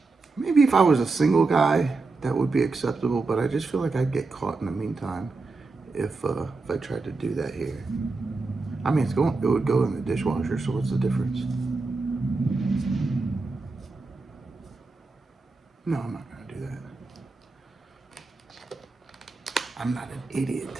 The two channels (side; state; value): left; quieter; 3.8 dB